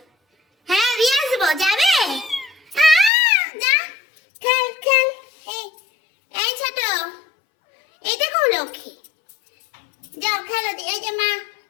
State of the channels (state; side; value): drops out; right; at 3.1 s